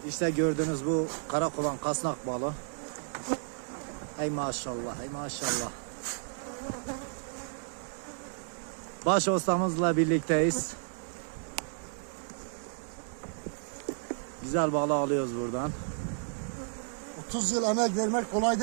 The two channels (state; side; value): silent; left; 56 dB below the other